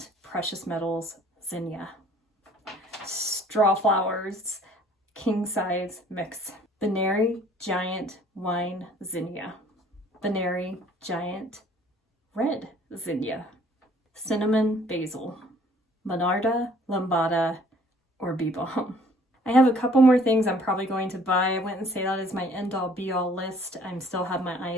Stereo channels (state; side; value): normal; both; correlation 0.57